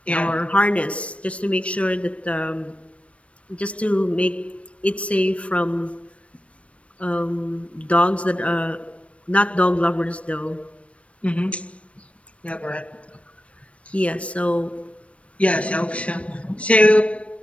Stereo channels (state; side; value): late; right; 0.063 ms